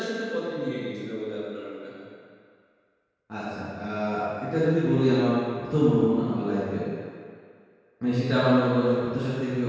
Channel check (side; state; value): both; identical; correlation 1.00